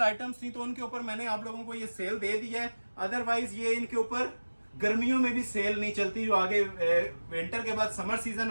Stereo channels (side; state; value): both; inverted; correlation -1.00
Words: आइटम्स थी, तो उनके ऊपर मैंने आप लोगों को ये सेल दे दी है। अदरवाइज ये इनके ऊपर गर्मियों में भी सेल नहीं चलती, जो आगे विंटर के बाद समर सीजन